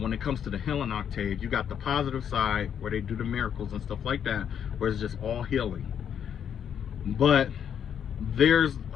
it comes to the healing octave, you got the positive side where they do the miracles and stuff like that, where it's just all healing. But there's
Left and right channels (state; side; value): quieter; right; 8.5 dB